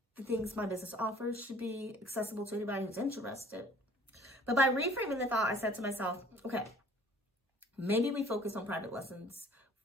the things my business offers should be accessible to anybody who's interested. But by reframing the thought, I said to myself, okay, maybe we focus on private lessons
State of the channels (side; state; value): both; normal; correlation 0.53